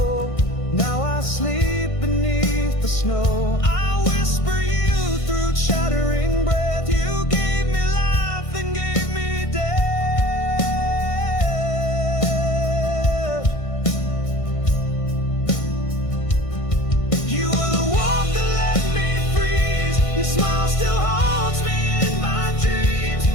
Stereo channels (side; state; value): right; late; 1.5 ms